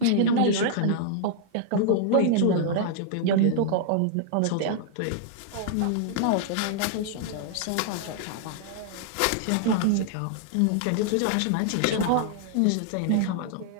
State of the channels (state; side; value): different; both; correlation -0.01